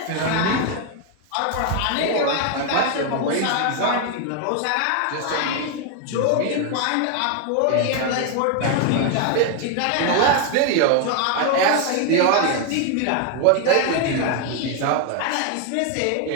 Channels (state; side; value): different; both; correlation 0.01